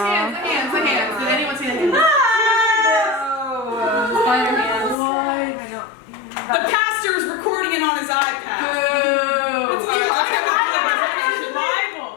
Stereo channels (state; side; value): drops out; right; at 5.0 s